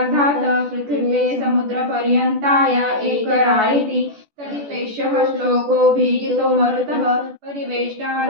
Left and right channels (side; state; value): left; late; 14 ms